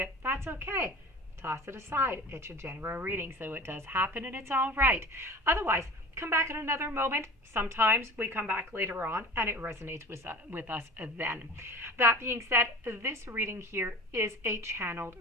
that's okay. Toss it aside. It's a general reading, so it does happen and it's all right. Otherwise, come back at another moment. Sometimes we come back later on and it resonates with us then. That being said, this reading here is a channeled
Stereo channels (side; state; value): both; normal; correlation 0.39